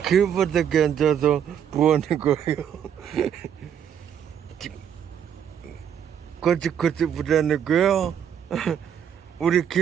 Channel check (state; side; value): quieter; left; 8.8 dB